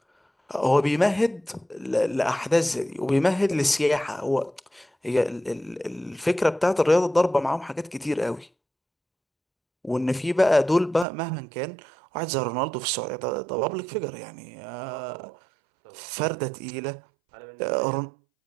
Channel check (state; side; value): drops out; left; at 11.1 s